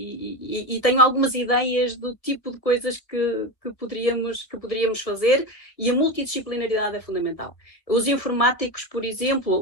tenho algumas ideias do tipo de coisas que poderíamos fazer, e a multidisciplinaridade é fundamental. Os informáticos, por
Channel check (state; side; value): late; right; 1.6 ms